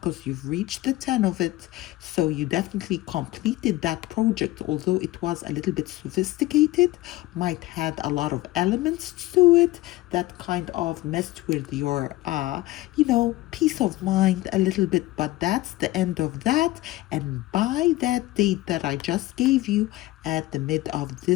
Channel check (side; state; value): right; quieter; 17.6 dB